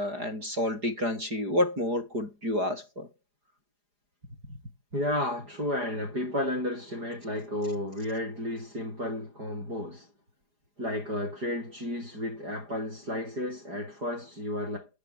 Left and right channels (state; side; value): late; left; 4.9 ms